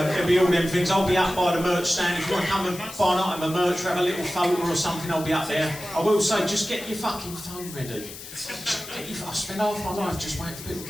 It'll be all them things. I'll be up by the merch stand. If you want to come and buy an item of merch or have a little photo or something, I'll be up there. I will say, just get your fucking phone ready. I spend half my life just waiting for people to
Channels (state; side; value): noise; left; hiss, 13 dB below the sound